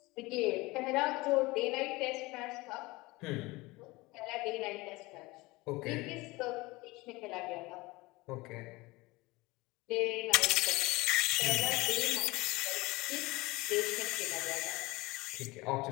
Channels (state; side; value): quieter; right; 22.0 dB